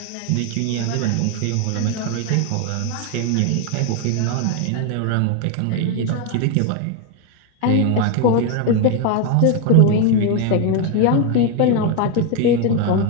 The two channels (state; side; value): different; both; correlation 0.01